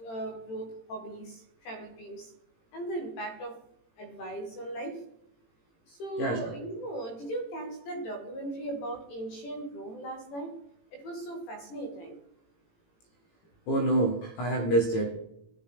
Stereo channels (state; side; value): late; right; 18 ms